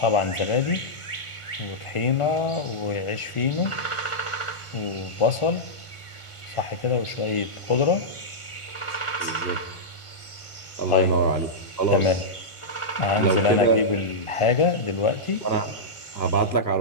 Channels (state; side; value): late; right; 1.4 ms